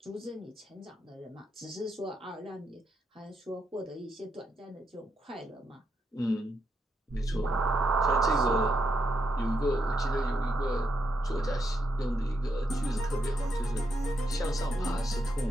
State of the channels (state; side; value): normal; both; correlation 0.81